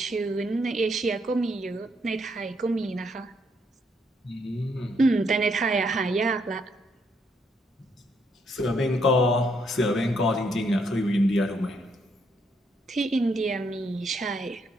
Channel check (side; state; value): both; normal; correlation 0.73